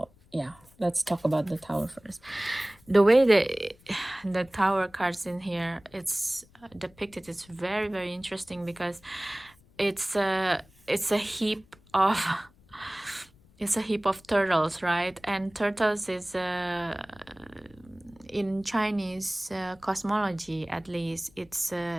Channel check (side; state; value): left; noise; rumble, 28 dB below the sound